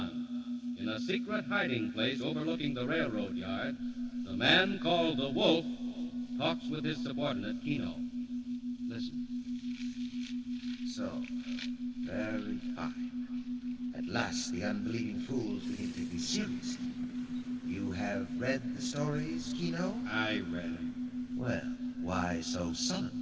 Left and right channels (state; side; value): identical; both; correlation 1.00